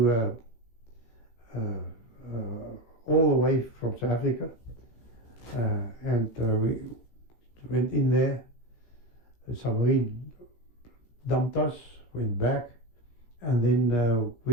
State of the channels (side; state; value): right; late; 17 ms